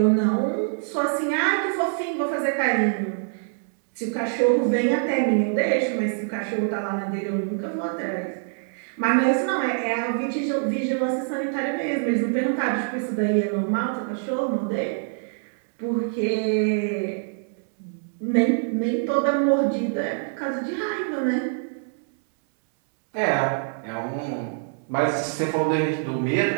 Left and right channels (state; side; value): silent; left; 62 dB below the other